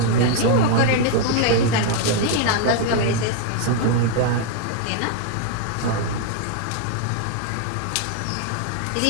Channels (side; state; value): both; different; correlation 0.00